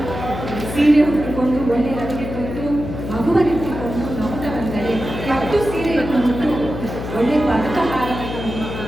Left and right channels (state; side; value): noise; left; hum, 7 dB below the sound